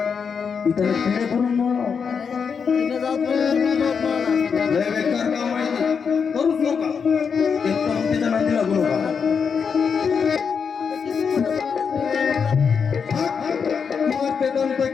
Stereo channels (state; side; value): quieter; right; 6.2 dB